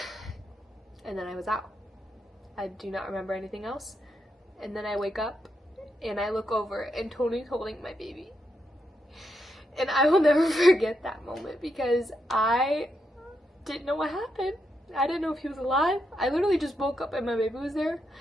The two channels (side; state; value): both; normal; correlation 0.82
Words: And then I was out. I do not remember anything else. And then I wake up, and I look over, and Tony's holding my baby. And I will never forget that moment because I didn't know what happened. I didn't know if he was alive. I literally just woke up and my baby was there.